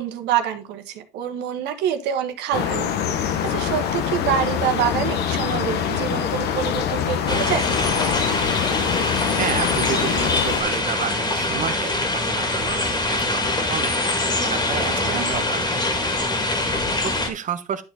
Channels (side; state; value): both; normal; correlation 0.07